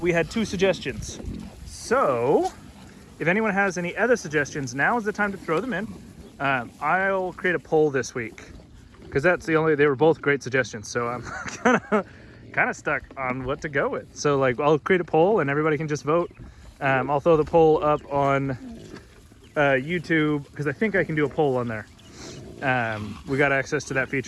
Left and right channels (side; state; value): both; identical; correlation 1.00